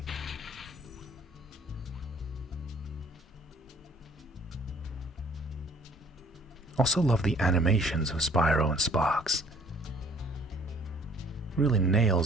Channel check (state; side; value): normal; both; correlation 0.56